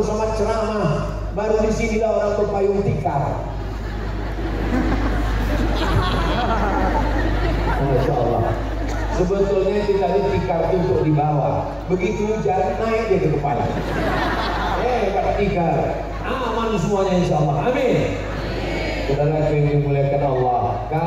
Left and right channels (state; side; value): identical; both; correlation 1.00